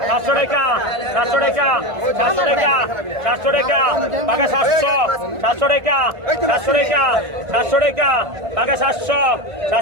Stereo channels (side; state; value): left; late; 1.5 ms